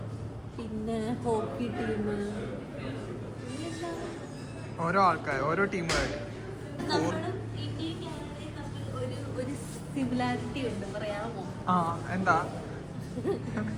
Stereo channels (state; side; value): identical; both; correlation 1.00